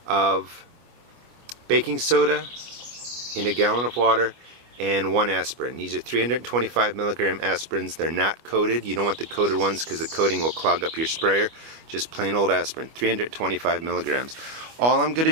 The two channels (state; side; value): late; left; 25 ms